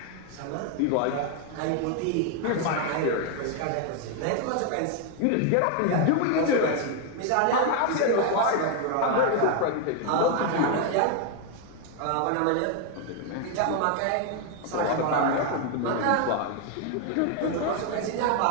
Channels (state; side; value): different; both; correlation 0.01